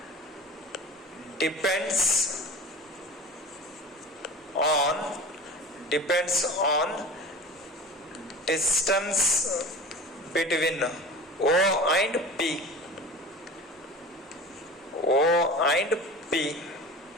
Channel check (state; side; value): normal; both; correlation 0.36